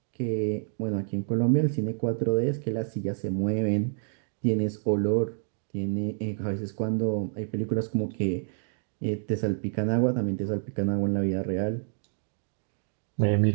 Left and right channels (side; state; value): left; silent; 59 dB below the other